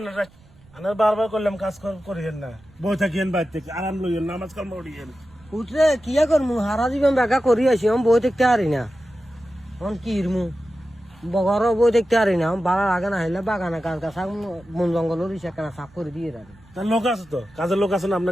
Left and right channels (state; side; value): noise; right; rumble, 27 dB below the sound